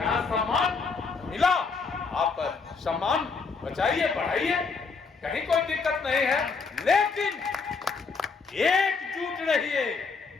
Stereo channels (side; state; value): right; quieter; 4.8 dB